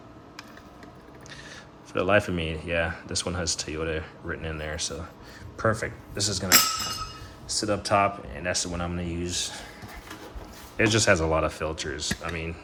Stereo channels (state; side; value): identical; both; correlation 1.00